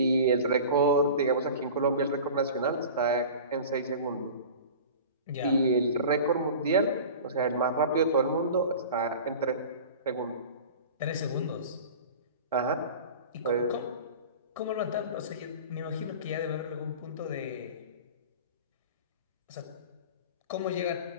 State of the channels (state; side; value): inverted; both; correlation -0.37